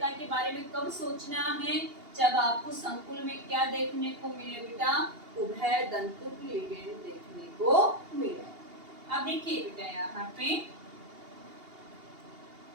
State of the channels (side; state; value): left; late; 2.8 ms